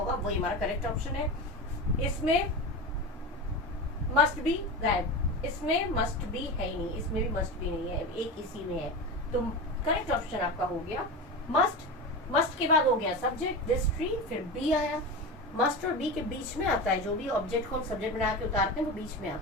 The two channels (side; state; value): both; normal; correlation 0.24